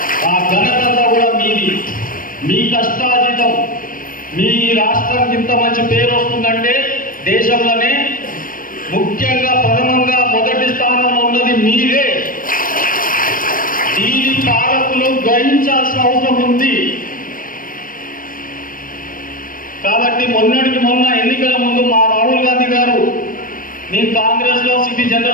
ఆ ఘనత కూడా మీది, మీ కష్టార్జితం. మీ రాష్ట్రానికి ఇంత మంచి పేరు వస్తుందంటే దేశంలోనే ముఖ్యంగా ప్రథమంగా మొదటి స్థానంలో ఉన్నది మీరే. దీని పాలకులు గ్రహించాల్సిన అవసరం ఉంది. కాబట్టి మొన్నటికి మొన్న ఎన్నికల ముందు మా రాహుల్ గాంధీ గారు, నేను కాంగ్రెస్లో సిటీ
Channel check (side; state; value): right; late; 0.40 ms